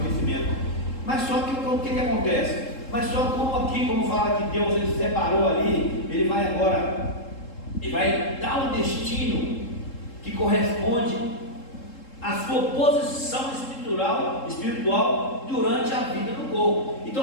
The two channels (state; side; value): late; right; 3.7 ms